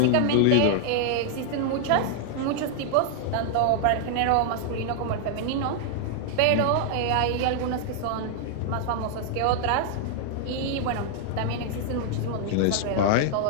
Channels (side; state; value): both; different; correlation -0.01